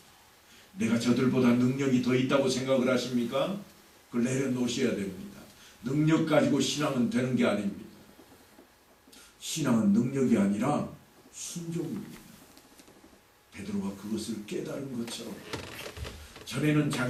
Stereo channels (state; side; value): identical; both; correlation 1.00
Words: 내가 저들보다 능력이 더 있다고 생각을 하십니까? 그걸 내려놓으셔야 됩니다. 능력 가지고 신앙은 되는 게 아닙니다. 신앙은 능력이 아니라 순종입니다. 베드로가 그것을 깨달은 것처럼 전에는